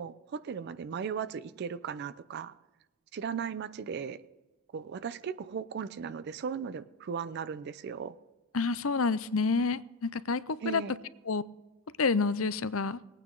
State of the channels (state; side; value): normal; both; correlation 0.08